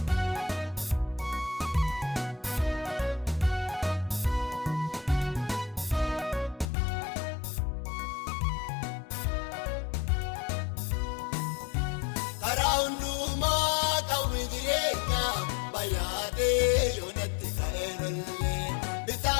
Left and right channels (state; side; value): drops out; right; at 6.7 s